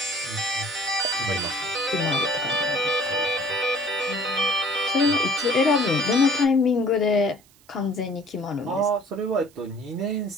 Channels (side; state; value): right; noise; hiss, 29 dB below the sound